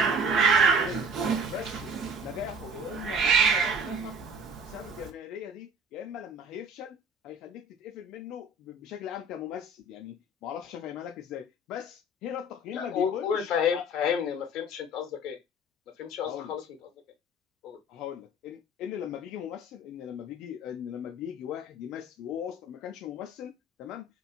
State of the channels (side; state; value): both; normal; correlation 0.46